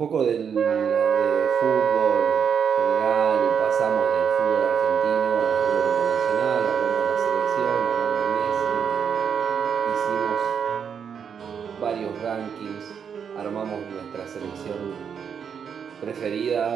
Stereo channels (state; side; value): quieter; left; 7.2 dB